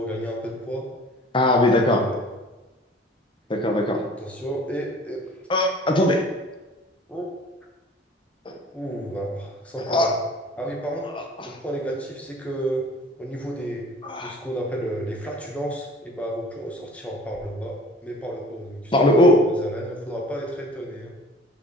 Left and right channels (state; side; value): normal; both; correlation 0.47